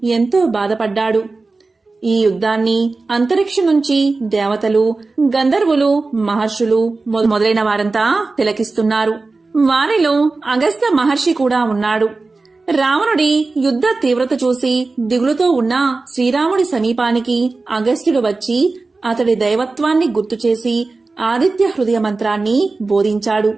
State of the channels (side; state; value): left; quieter; 3.7 dB